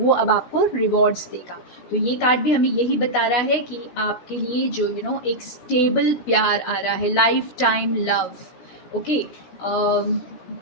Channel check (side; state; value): right; late; 16 ms